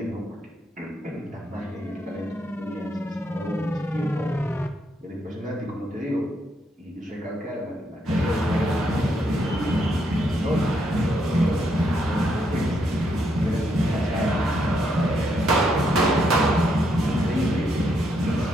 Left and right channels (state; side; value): normal; both; correlation 0.76